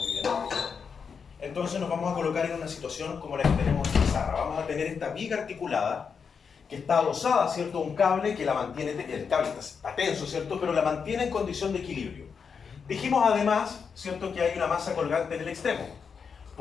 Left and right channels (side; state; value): right; quieter; 6.1 dB